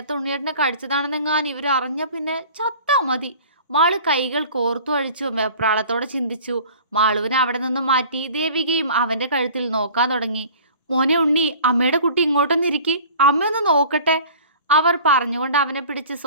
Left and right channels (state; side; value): inverted; both; correlation -0.45